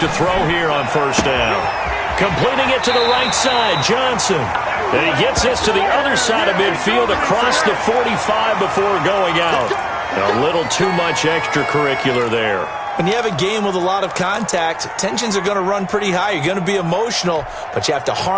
throw here on 1st down. Completing it to the right side, Johnson. And he gets this to the other side of midfield across the 45 before going out. A little too much extracurricular there. When you have a game with a lot of contact, tensions are going to run pretty high. You're going to be emotional, but you have to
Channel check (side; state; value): both; identical; correlation 1.00